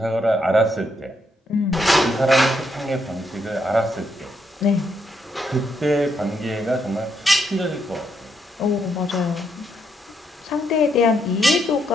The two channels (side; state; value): both; normal; correlation 0.77